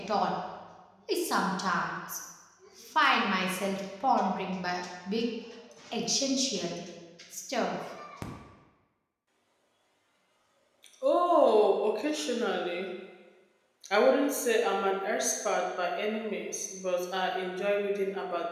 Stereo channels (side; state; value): both; identical; correlation 1.00